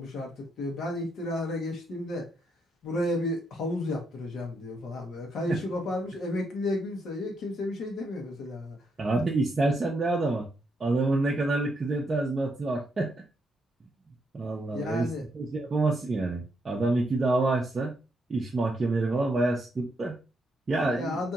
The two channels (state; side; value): normal; both; correlation 0.78